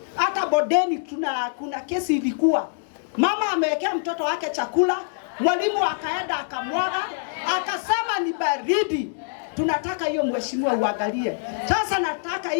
Hata bodeni kuna kesi ilikuwa. Mama amewekea mtoto wake chakula, mwalimu akaenda akamwaga, akasema ni baridi. Tunataka hiyo mheshimiwa uangalie. Sasa nataka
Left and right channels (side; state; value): right; silent; digital silence